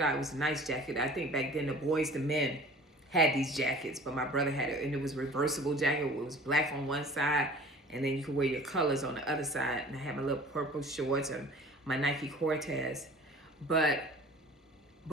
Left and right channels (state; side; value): normal; both; correlation 0.45